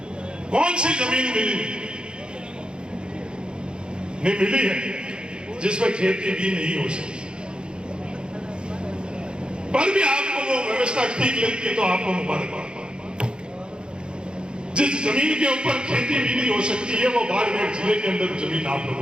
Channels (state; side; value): late; left; 0.051 ms